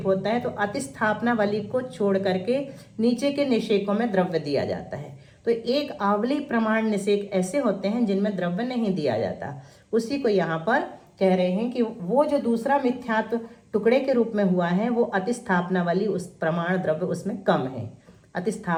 होता है तो अतिस्थापनावली को छोड़ करके नीचे के निषेकों में द्रव्य दिया जाता है। तो एक आवली प्रमाण निषेक ऐसे होते हैं जिनमें द्रव्य नहीं दिया जाता। उसी को यहाँ पर कह रहे हैं कि वो जो दूसरा मिथ्यात्व टुकड़े के रूप में हुआ है वो अतिस्थापनावली, उस प्रमाण द्रव्य उसमें कम है,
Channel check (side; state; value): both; identical; correlation 1.00